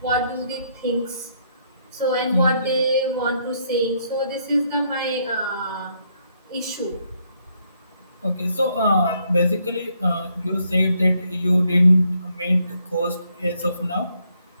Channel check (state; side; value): inverted; both; correlation -0.73